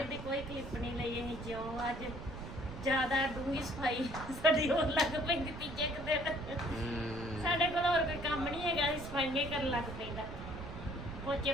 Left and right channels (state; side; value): noise; right; rumble, 10 dB below the sound